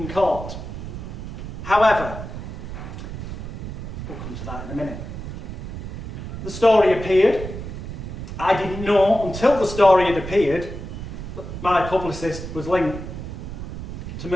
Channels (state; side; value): noise; right; rumble, 8 dB below the sound